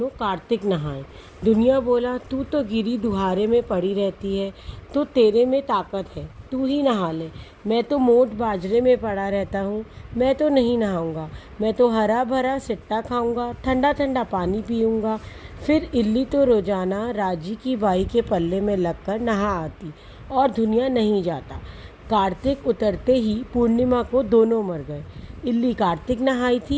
कार्तिक नहाए। दुनिया बोला, तू तो गिरी दुहारे में पड़ी रहती है, तो तेरे में ताकत है, तू ही नहा ले। मैं तो मोट बाजरे में पड़ा रहता हूँ, मैं तो नहीं नहाऊंगा। मैं तो हरा भरा सिट्टा खाऊंगा, ठंडा ठंडा पानी पीऊंगा। फिर इल्ली तो रोजाना राजी की बाई के पल्ले में लगकर नहा आती और दुनिया नहीं जाता। कार्तिक उतरते ही पूर्णिमा को दोनों मर गए। इल्ली कार्तिक नहाई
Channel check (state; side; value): identical; both; correlation 1.00